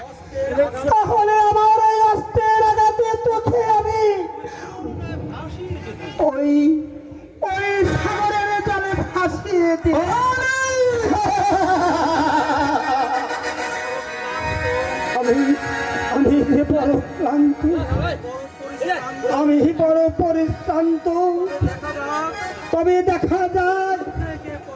তাহলে আমার এই অস্ত্রের আঘাতে তোকে আমি ওই ওই সাগরের জলে ভাসিয়ে দিই। আমি আমি বড় ক্লান্ত, আমি বড় পরিশ্রান্ত। তবে দেখা যাক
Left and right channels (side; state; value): both; identical; correlation 1.00